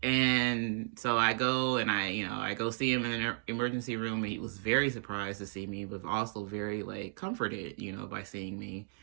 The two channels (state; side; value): silent; left; digital silence